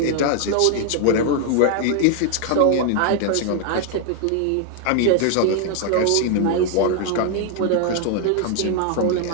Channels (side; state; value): both; different; correlation 0.00